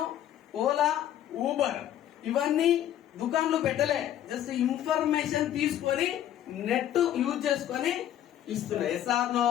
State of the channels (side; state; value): right; quieter; 11.4 dB